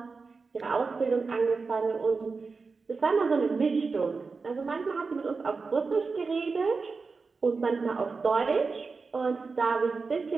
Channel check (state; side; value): quieter; left; 4.5 dB